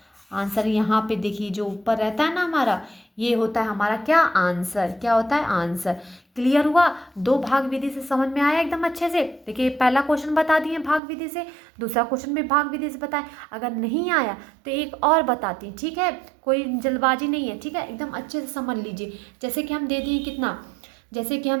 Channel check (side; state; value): left; drops out; at 11.0 s